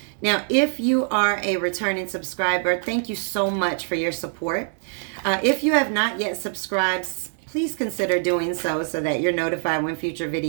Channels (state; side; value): silent; left; 58 dB below the other